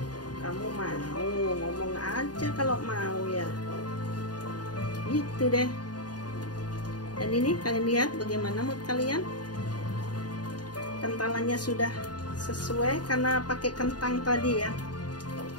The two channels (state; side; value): late; right; 0.69 ms